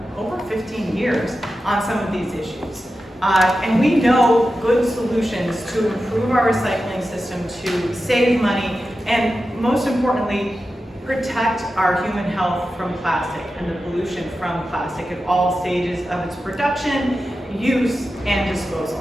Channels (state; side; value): normal; both; correlation 0.92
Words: 15 years on some of these issues. And we know good solutions to improve our recycling system, to save money, and most importantly, protect our human health from plastic and the pollution from plastic at all stages of its production, use, and